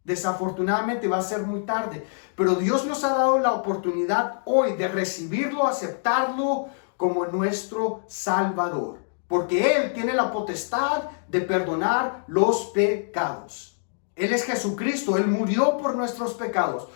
Desafortunadamente va a ser muy tarde, pero Dios nos ha dado la oportunidad hoy de recibirlo, aceptarlo como nuestro Salvador, porque Él tiene la potestad de perdonar los pecados. Él es Jesucristo, Él murió por nuestros pecados.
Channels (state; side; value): silent; right; digital silence